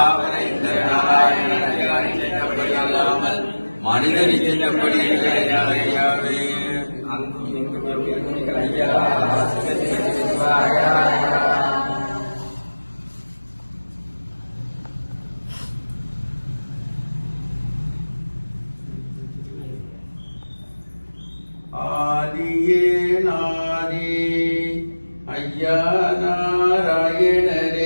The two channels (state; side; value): inverted; both; correlation -1.00